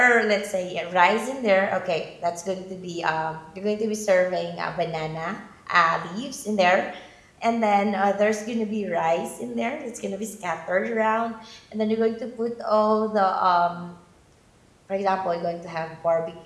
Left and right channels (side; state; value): both; identical; correlation 1.00